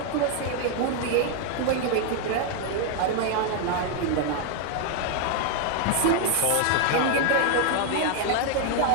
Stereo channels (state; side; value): different; both; correlation 0.00